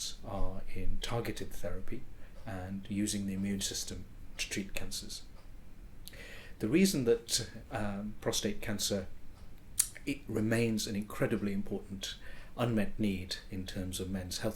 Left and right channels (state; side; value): identical; both; correlation 1.00